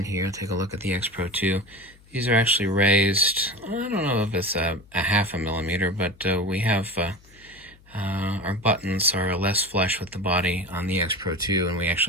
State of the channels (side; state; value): left; noise; hum, 26 dB below the sound